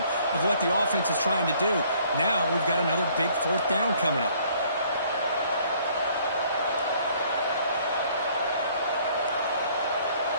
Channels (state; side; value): inverted; both; correlation -0.60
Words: of what the offense is trying to do. Now we've got another big 4th down coming up.